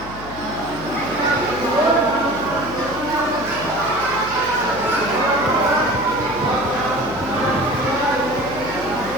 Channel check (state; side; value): noise; left; hum, 13 dB below the sound